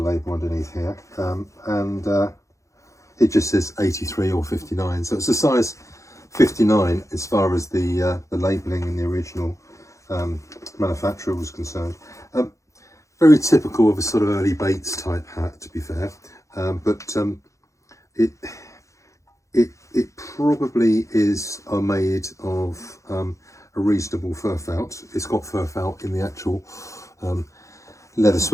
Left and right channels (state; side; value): late; right; 0.15 ms